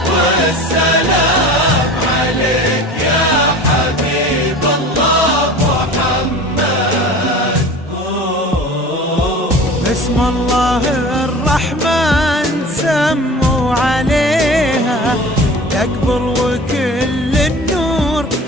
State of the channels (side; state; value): both; normal; correlation 0.39